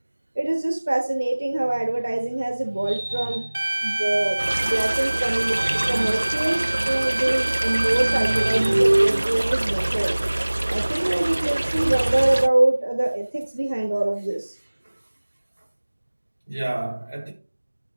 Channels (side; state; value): both; inverted; correlation -1.00